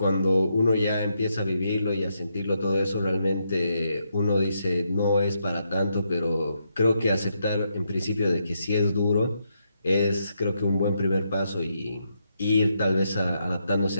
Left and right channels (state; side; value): inverted; both; correlation -0.80